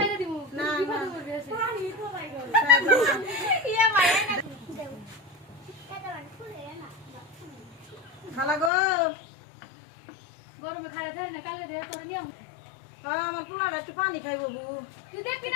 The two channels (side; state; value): right; drops out; at 8.7 s